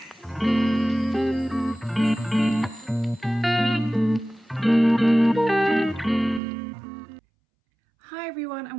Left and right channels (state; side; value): drops out; left; at 6.4 s